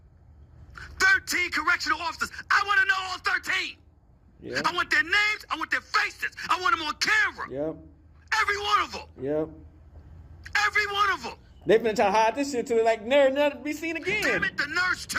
13 correctional officers, I want to know all 13. Yep. I want their names. I want their faces. I want them on camera. Yep. Every one of them. Yep. Every one of them. They finna try to hide this shit till they like never be seen again. Damn it, the nurse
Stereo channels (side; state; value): both; identical; correlation 1.00